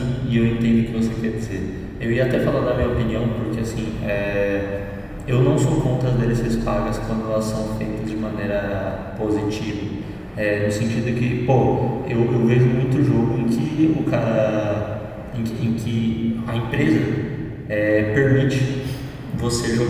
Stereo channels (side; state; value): both; identical; correlation 1.00